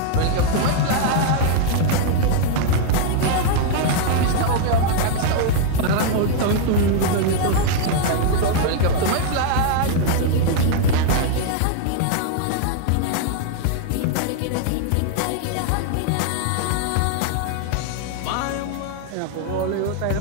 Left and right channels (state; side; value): different; both; correlation 0.00